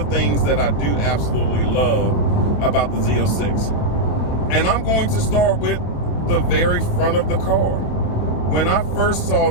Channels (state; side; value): late; right; 28 ms